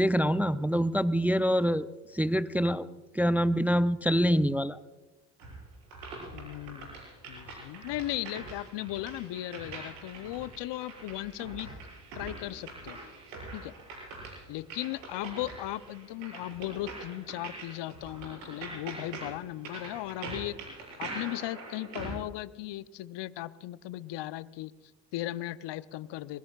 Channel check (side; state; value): both; normal; correlation 0.70